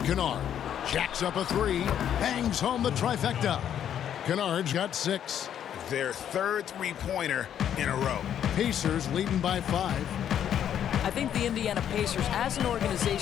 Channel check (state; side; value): quieter; right; 9.7 dB